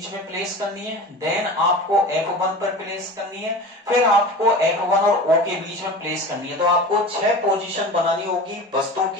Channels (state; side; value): normal; both; correlation 0.34